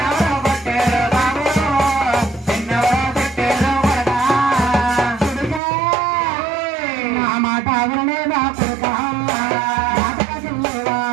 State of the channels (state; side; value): drops out; left; at 5.6 s